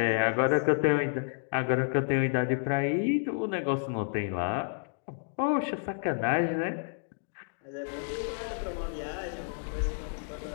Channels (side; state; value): right; silent; digital silence